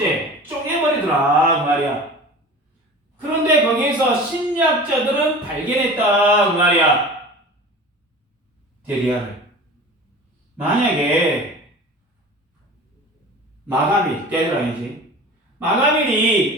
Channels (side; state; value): both; normal; correlation 0.38